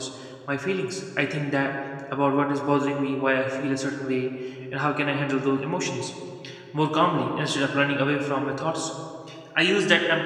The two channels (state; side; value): identical; both; correlation 1.00